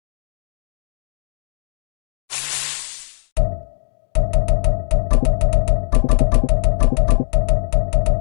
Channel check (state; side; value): silent; right; 67 dB below the other